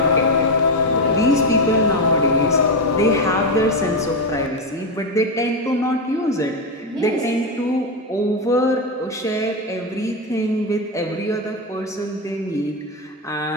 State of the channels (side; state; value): both; normal; correlation 0.10